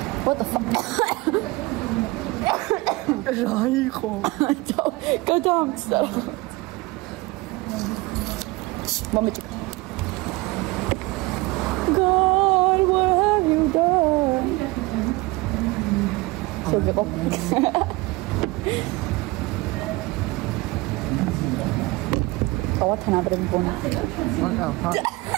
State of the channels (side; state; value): left; quieter; 22.4 dB